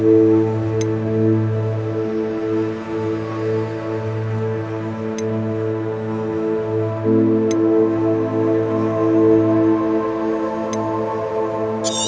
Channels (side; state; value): both; identical; correlation 1.00